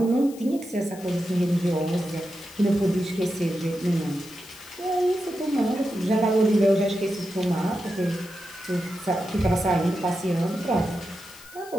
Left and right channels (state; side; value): noise; left; hiss, 20 dB below the sound